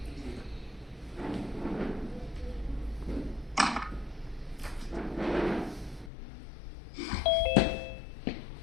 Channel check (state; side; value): drops out; right; at 6.1 s